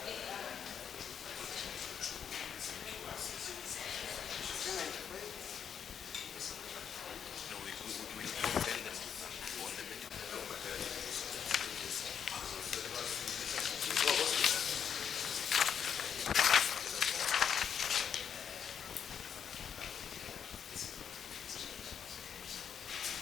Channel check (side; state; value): right; quieter; 7.8 dB